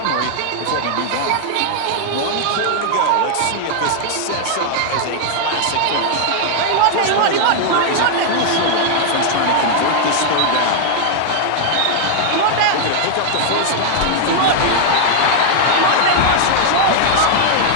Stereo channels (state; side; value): different; both; correlation 0.00